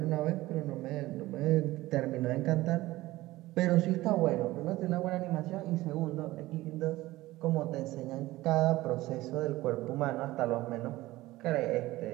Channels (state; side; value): quieter; left; 17.9 dB